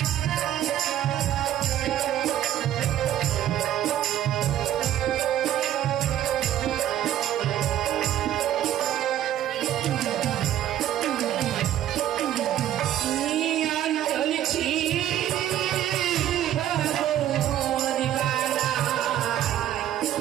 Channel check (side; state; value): left; quieter; 11.9 dB